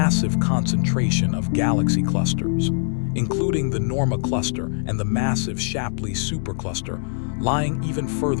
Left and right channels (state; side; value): silent; right; digital silence